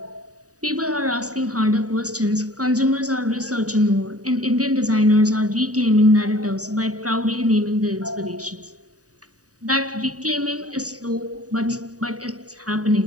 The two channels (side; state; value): left; late; 0.67 ms